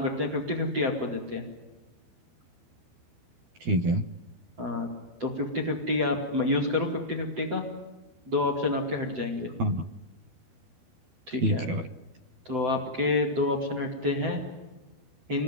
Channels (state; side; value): late; left; 12 ms